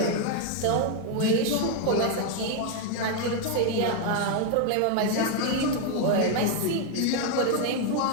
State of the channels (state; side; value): different; both; correlation 0.01